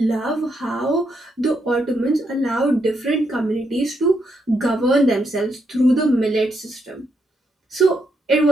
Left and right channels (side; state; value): both; normal; correlation 0.79